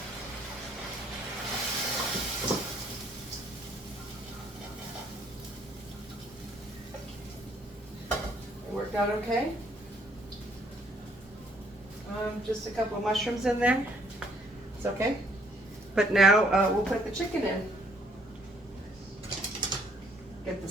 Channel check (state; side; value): normal; both; correlation 0.66